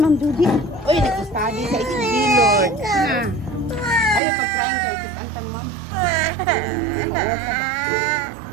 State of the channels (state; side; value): drops out; left; at 4.2 s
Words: Judy. Uy, nag-study sa SB, Lord. Na. Ayaw pag-trying kayo. Kitantang, ma'am.